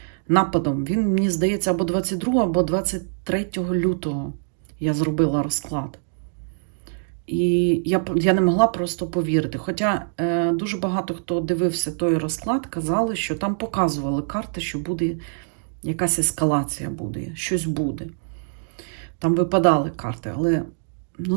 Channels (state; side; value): silent; left; digital silence